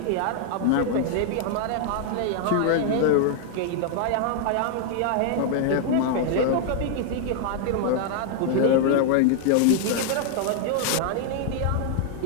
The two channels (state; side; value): different; both; correlation 0.00